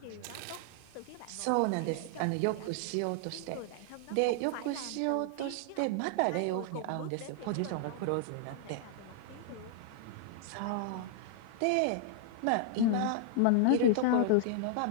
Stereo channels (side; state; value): both; different; correlation -0.01